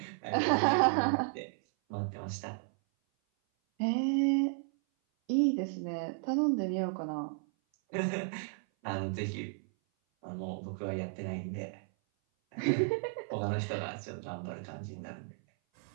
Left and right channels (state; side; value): silent; left; 55 dB below the other